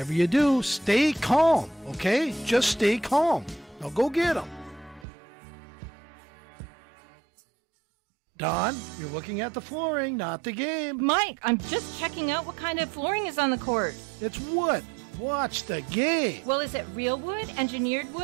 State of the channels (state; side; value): drops out; left; at 5.1 s